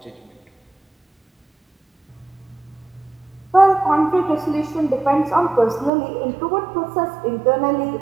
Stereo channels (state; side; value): drops out; left; at 5.9 s